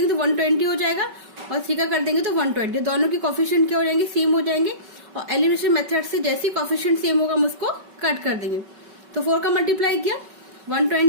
तो 120 हो जाएगा, और 3 का कर देंगे तो 120। दोनों की कोफिशिएंट क्या हो जाएंगे, सेम हो जाएंगे, और एलिमिनेशन मेथड से जैसे कोफिशिएंट सेम होगा हम उसको कट कर देंगे। तो 4 का मल्टीप्लाई किया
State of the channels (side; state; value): left; late; 5.2 ms